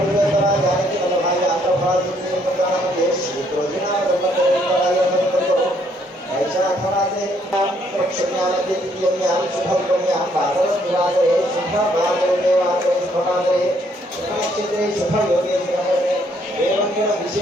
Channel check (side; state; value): both; normal; correlation 0.68